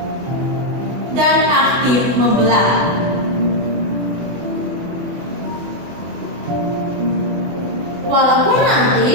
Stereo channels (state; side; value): late; left; 24 ms